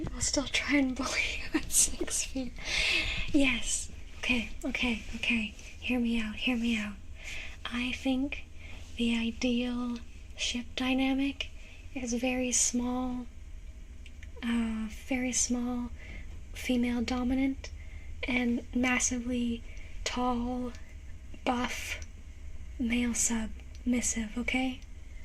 will still try and bully you at 6 feet. Yes. Okay. Hear me out. I think the ideal ship dynamic is very small, female dominant, and massively tall, buff, male submissive, okay?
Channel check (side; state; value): both; identical; correlation 1.00